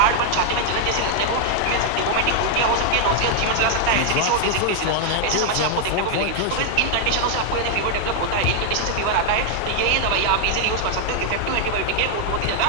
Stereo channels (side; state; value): both; different; correlation 0.00